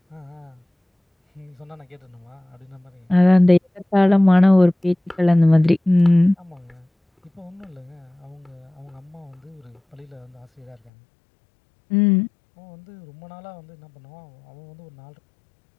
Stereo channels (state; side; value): drops out; right; at 10.9 s